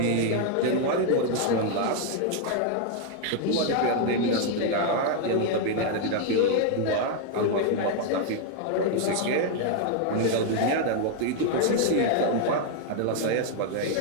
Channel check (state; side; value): different; both; correlation 0.00